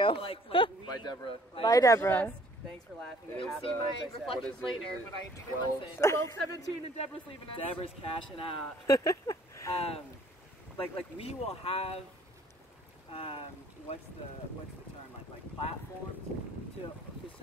Like we, Bye, Deborah. Bye, Deborah. Thanks for laughing. It's, See my what reflections is it? later, Is it but I didn't 12, listen. 12:17 and Deborah's leaving us. Deborah's cashing out. Like we will have what's the term, like platforms to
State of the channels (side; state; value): both; normal; correlation 0.58